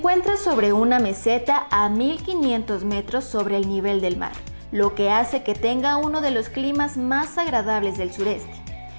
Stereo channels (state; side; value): inverted; both; correlation -1.00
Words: sobre una meseta a 1500 metros sobre el nivel del mar, lo que hace que tenga uno de los climas más agradables del sureste.